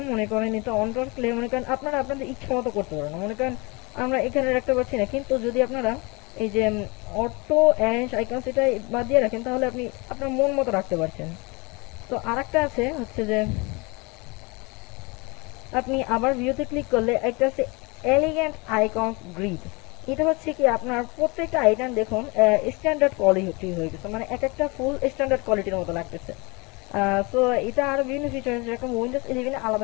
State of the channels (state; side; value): quieter; right; 27.5 dB